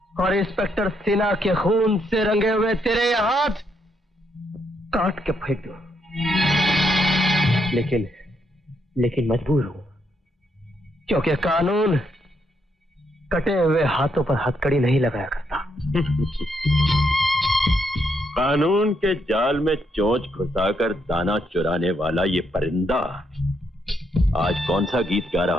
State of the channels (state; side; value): normal; both; correlation 0.77